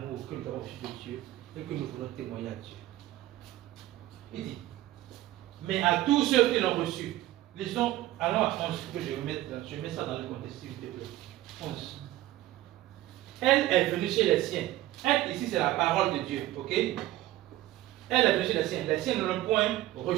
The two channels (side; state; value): left; quieter; 15.5 dB